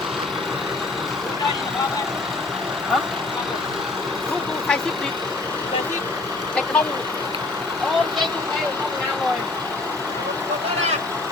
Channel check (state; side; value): quieter; right; 3.3 dB